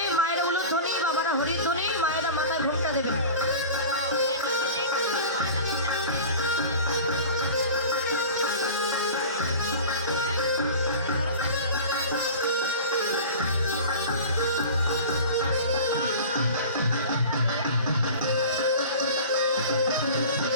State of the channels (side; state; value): both; inverted; correlation -0.36